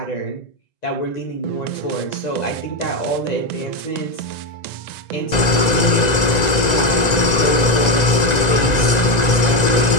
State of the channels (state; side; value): late; right; 1.9 ms